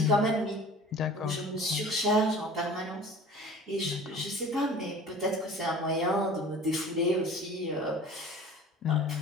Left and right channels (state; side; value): normal; both; correlation 0.43